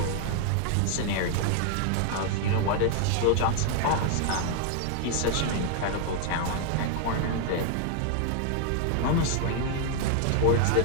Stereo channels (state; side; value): different; both; correlation 0.00